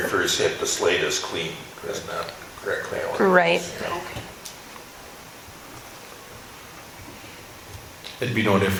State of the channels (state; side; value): identical; both; correlation 1.00